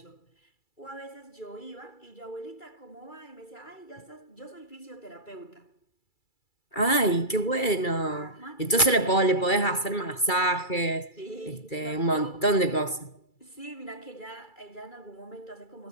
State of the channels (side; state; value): right; late; 2.3 ms